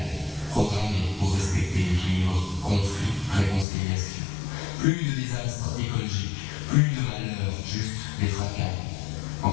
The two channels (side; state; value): right; drops out; at 3.7 s